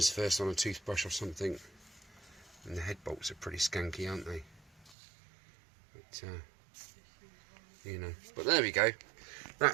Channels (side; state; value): left; drops out; at 5.0 s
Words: first on a toothbrush or something. And the head bolts are pretty skanky, aren't they? But, you know. But there we go.